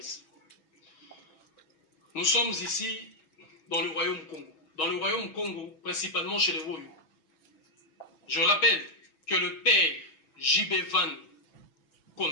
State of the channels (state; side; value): late; right; 6.5 ms